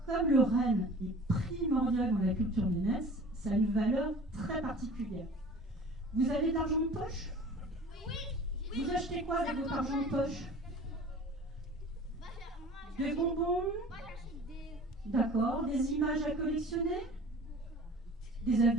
comme le renne est primordial dans la culture nénèse, ça a une valeur très particulière. Vous avez de l'argent de poche? Oui. Vous achetez quoi avec votre argent de poche? Des bonbons? Moi, j'achète des... D'accord. Des images à collectionner? Des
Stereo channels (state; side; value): normal; both; correlation 0.43